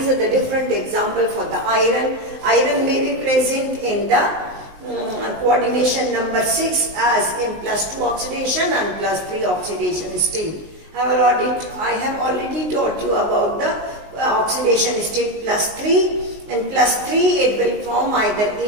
are the different examples for the iron. Iron may be present in the coordination number 6 as in +2 oxidation and +3 oxidation state. I have already taught you about the oxidation state +3. In +3 it will form either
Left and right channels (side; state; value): left; late; 19 ms